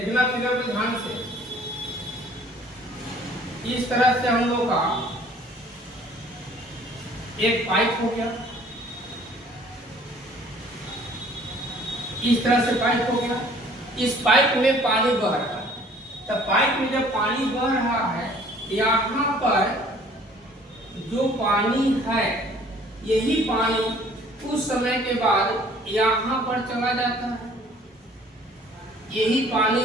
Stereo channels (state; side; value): normal; both; correlation 0.54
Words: फिगर पर ध्यान से। इस तरह से हम लोग का एक पाइप हो गया, इस तरह से पाइप हो गया। इस पाइप में पानी बह रहा है। तो पाइप में जब पानी बह रहा है, यहाँ पर जो पानी है, यही पानी कुछ समय के बाद यहाँ पर चला जाता है। यही पानी